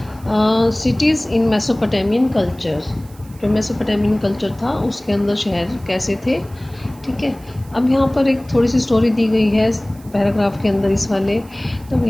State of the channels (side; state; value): right; noise; hiss, 26 dB below the sound